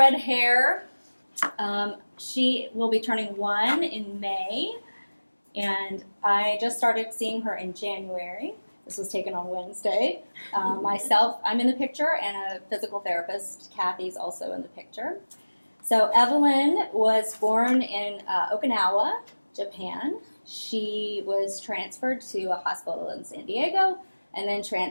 hair. She will be turning 1 in May, and I just started seeing her in January. This was taken on Wednesday. Myself, I'm in the picture, and a physical therapist, Kathy's also in the picture. So Evelyn was born in Okinawa, Japan. She was transferred to a hospital in San Diego, and then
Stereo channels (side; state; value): both; inverted; correlation -1.00